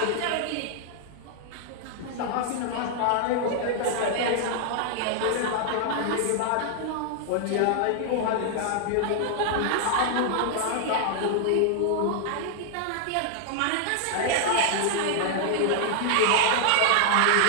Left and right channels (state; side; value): different; both; correlation 0.00